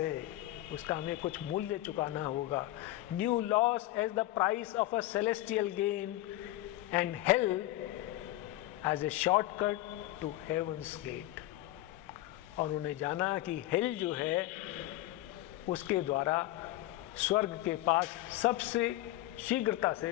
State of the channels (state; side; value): quieter; right; 16.3 dB